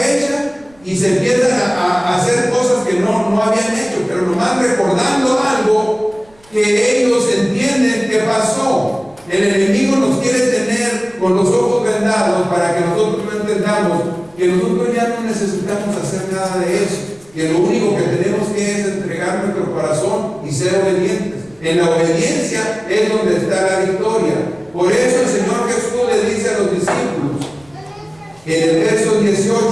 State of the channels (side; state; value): right; noise; rumble, 29 dB below the sound